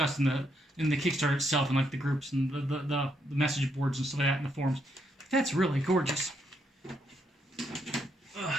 in the Kickstarter itself, and like the groups and the message boards and stuff like that in the forums. That's really gorgeous.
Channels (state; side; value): normal; both; correlation 0.77